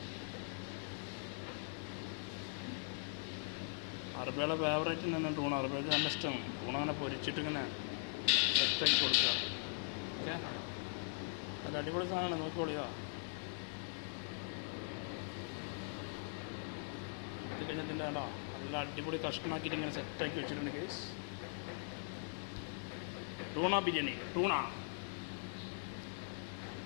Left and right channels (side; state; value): right; silent; digital silence